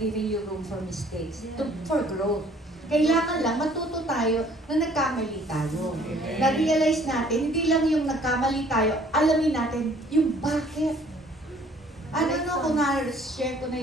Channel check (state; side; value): normal; both; correlation 0.57